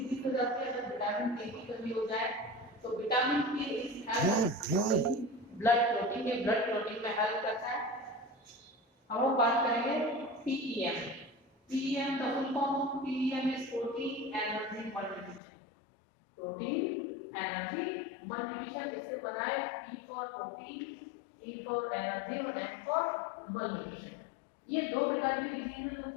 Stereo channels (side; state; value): right; drops out; at 15.4 s